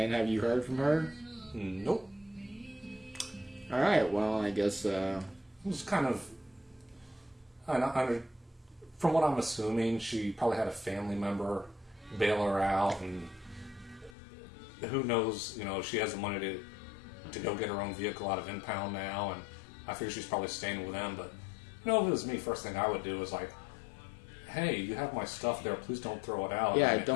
have you heard from her? Nope. All right. Well, I guess it was kind of. From what I'm assuming, she probably had a family member bail her out, and who knows? You know, she has the money to go get her own vehicle out of impound now, and I figure she's probably staying with them. But you know, if it was me, first thing I would do is like, hey, you have my stuff there. Please don't throw it out. Yeah,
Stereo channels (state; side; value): drops out; right; at 14.2 s